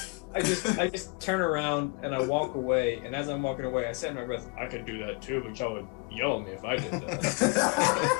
I just turn around and I walk away, and as I'm walking away, I say in my breath, I could do that too, but y'all would yell at me if I did that.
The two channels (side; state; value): right; quieter; 29.6 dB